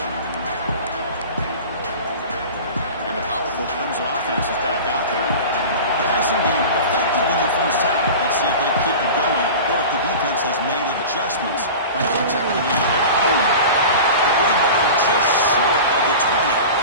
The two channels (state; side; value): inverted; both; correlation -0.34